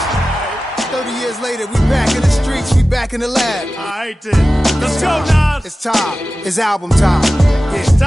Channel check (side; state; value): both; normal; correlation 0.95